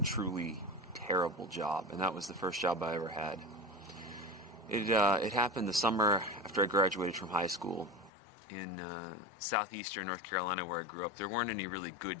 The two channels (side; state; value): right; drops out; at 8.1 s